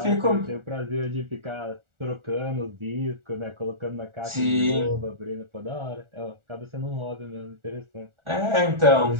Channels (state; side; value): late; left; 1.4 ms